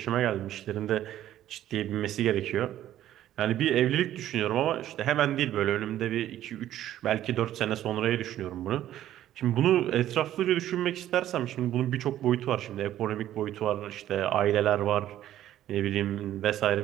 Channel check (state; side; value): quieter; left; 12.5 dB